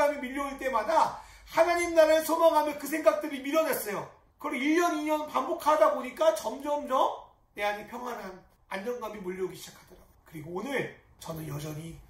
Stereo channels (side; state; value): both; identical; correlation 1.00